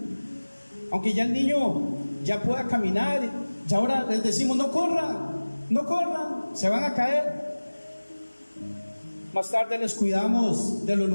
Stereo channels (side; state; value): both; inverted; correlation -1.00